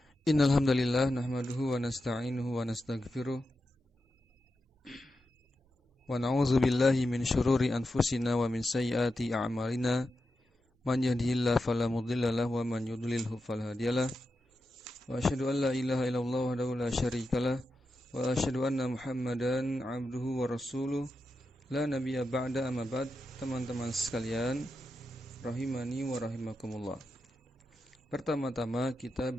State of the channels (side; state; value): both; normal; correlation 0.89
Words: Innal hamdalillah nahmaduhu wa nasta'inuhu wa nastaghfiruh wa na'udzu billahi min syururi anfusina wa min sayyiati a'malina. Man yahdihillahu fala mudilla lahu wa man yudlilhu fala hadiyalah. Wa asyhadu an la ilaha illallah wahdahu la syarikalah wa asyhadu anna Muhammadan 'abduhu wa rasuluh. La nabiyya ba'da, amma ba'd. Teman-teman sekalian, rahimani wa rahimakumullah. Pertama-tama kita